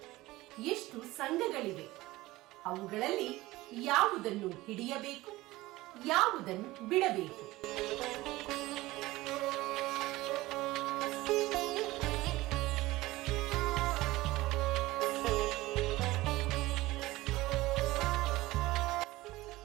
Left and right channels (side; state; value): left; quieter; 18.8 dB